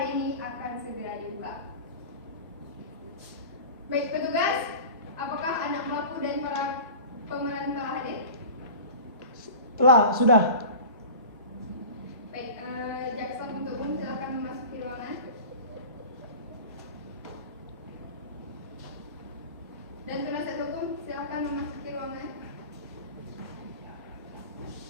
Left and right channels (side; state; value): both; inverted; correlation -0.36